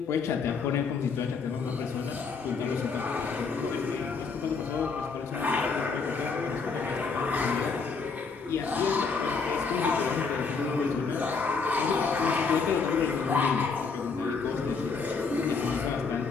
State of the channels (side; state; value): right; quieter; 4.9 dB